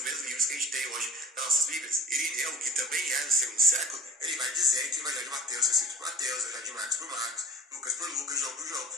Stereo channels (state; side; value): normal; both; correlation 0.43